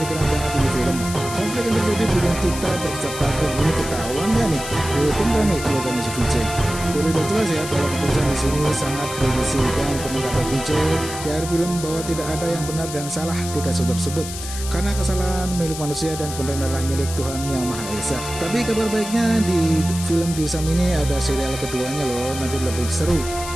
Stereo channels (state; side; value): noise; left; hiss, 9 dB below the sound